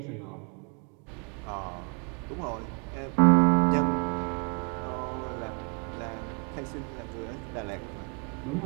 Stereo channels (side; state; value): left; quieter; 38.8 dB